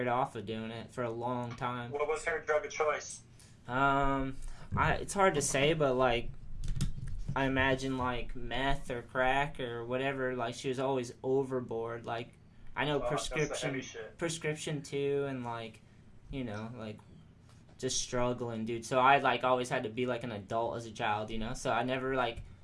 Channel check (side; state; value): both; identical; correlation 1.00